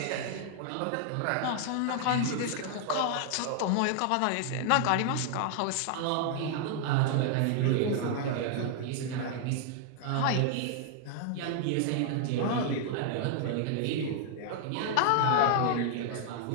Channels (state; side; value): different; both; correlation 0.00